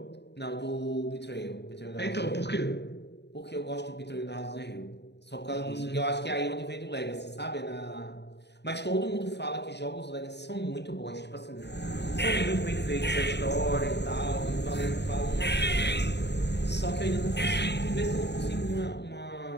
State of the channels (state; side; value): late; right; 0.50 ms